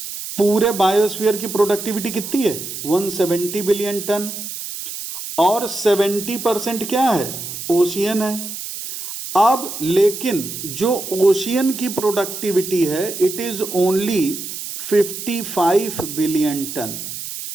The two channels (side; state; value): right; noise; hiss, 8 dB below the sound